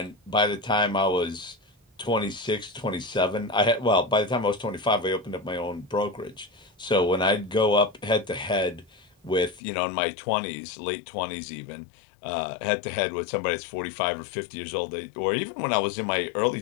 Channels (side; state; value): right; drops out; at 9.6 s